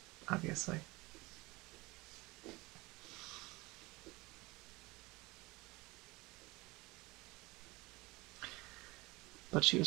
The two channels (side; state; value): left; quieter; 22.6 dB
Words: obviously. But she